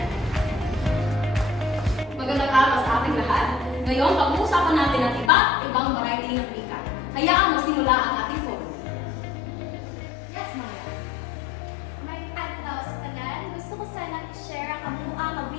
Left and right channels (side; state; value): right; drops out; at 5.3 s